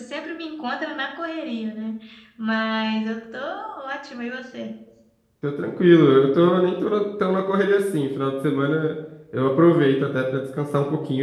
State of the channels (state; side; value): identical; both; correlation 1.00